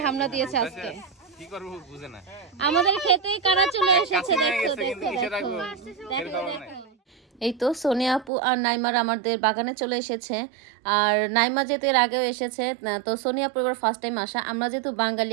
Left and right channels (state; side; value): drops out; left; at 8.3 s